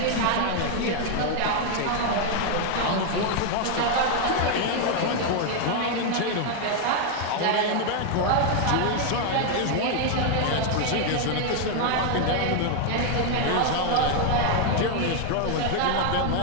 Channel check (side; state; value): both; different; correlation 0.01